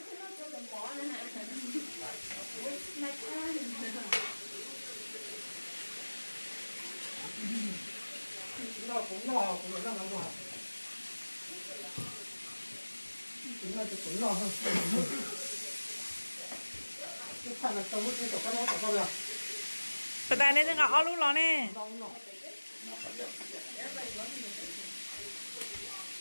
Tụi ta nên ngõ lúc đó nè.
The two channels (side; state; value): both; inverted; correlation -1.00